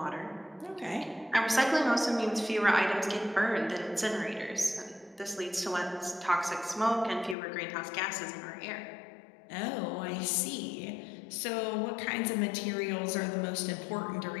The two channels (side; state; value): right; drops out; at 7.4 s